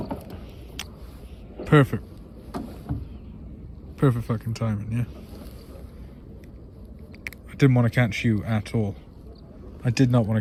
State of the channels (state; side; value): identical; both; correlation 1.00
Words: Perfect. Perfect fucking timing, yeah. I didn't want to catch you at all. I did not